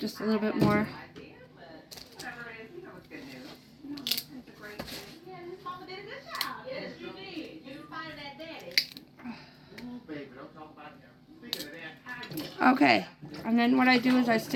a little bit more. Okay, and then what I do is I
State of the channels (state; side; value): identical; both; correlation 1.00